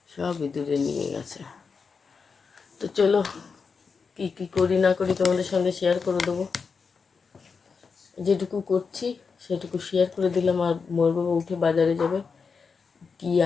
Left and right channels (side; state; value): right; quieter; 5.3 dB